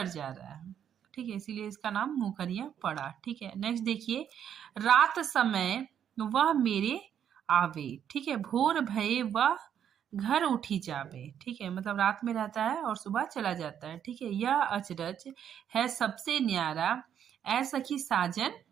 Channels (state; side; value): quieter; left; 9.1 dB